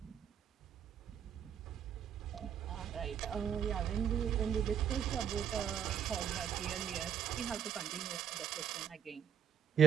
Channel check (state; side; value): quieter; left; 8.8 dB